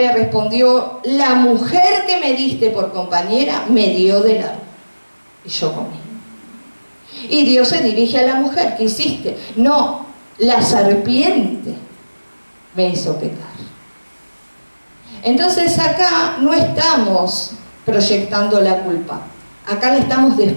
respondió, la mujer que me diste por compañera me dio del árbol. Y yo comí. Y Dios se dirige a la mujer, ¿qué hiciste? No, la serpiente me hizo pecar. Entonces acá no estamos proyectando la culpa, acá la estamos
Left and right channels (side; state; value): both; inverted; correlation -1.00